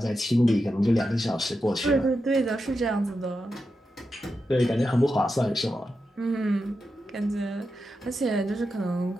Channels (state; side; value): normal; both; correlation 0.88